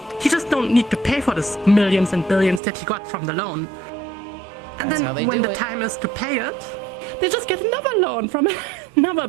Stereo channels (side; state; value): left; drops out; at 2.6 s